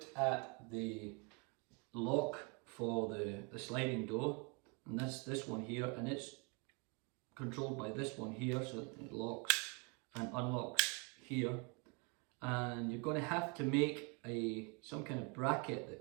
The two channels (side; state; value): left; quieter; 33.0 dB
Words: at the lock for the sliding door, and that's this one here, and it's controlled by this one here, so it locks and unlocks here. And you're going to have to make some kind of bracket